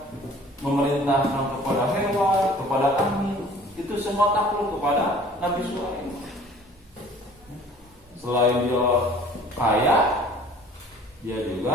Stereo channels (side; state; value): both; normal; correlation 0.50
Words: memerintahkan kepada hewan, kepada angin. Itu semua takluk kepada Nabi Sulaiman. Selain dia kaya, dia